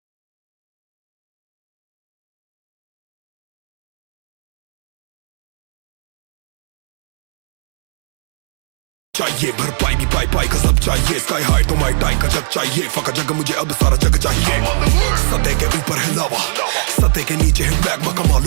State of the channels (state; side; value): silent; left; digital silence